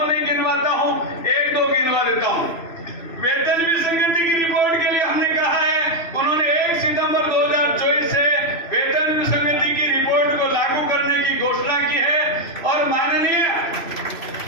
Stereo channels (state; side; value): late; right; 3.0 ms